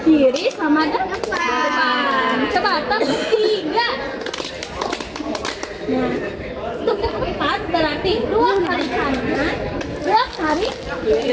kiri sama depan. Coba tepuk tiga. Nah, tepuk empat berarti dua kali kanan, dua kali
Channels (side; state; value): both; identical; correlation 1.00